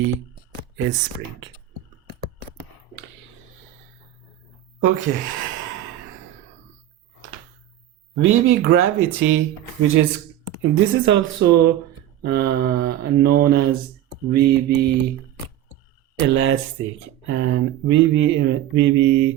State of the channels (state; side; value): quieter; left; 12.5 dB